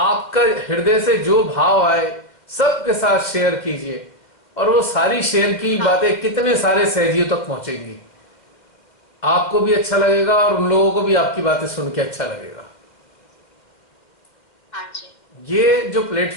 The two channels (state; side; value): late; right; 2.1 ms